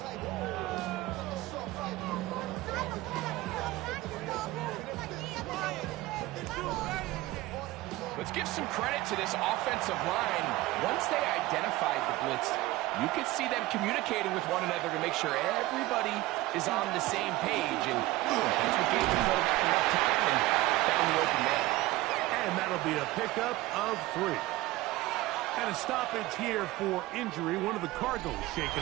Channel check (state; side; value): quieter; left; 18.3 dB